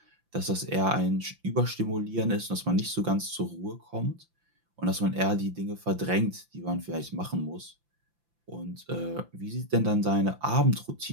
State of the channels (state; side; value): late; left; 5.8 ms